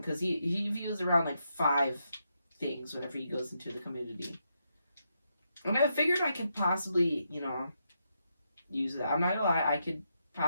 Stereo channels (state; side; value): inverted; both; correlation -0.81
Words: because he views around like 5 things whenever he goes into the community. And I figured I could possibly, you know, use that. I'm not gonna lie, I could